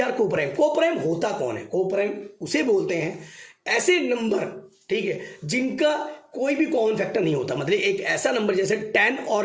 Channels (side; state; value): both; identical; correlation 1.00